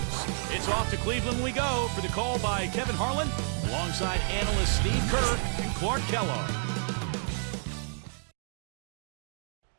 It's off to Cleveland we go for the call by Kevin Harlan, alongside analysts Steve Kerr and Clark Kellogg.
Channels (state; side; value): silent; left; digital silence